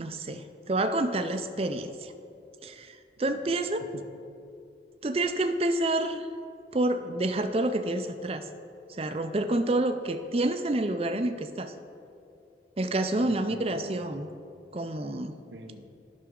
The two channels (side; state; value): both; normal; correlation 0.54